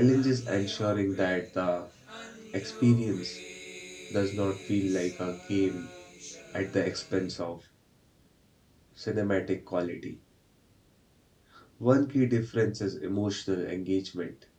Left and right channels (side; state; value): both; identical; correlation 1.00